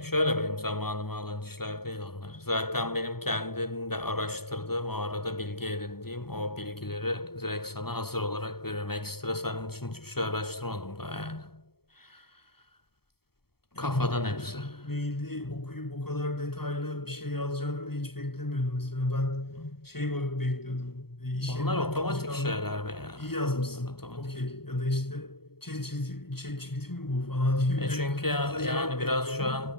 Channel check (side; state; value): right; late; 0.95 ms